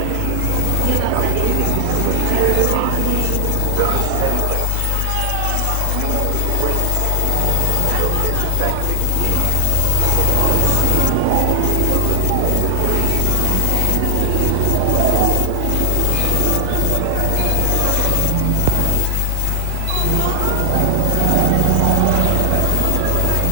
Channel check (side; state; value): both; different; correlation 0.00